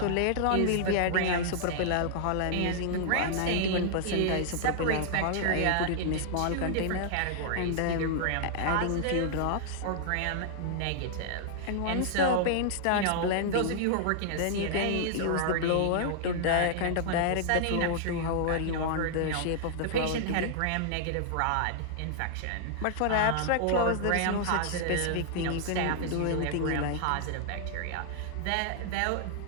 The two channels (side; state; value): both; different; correlation -0.01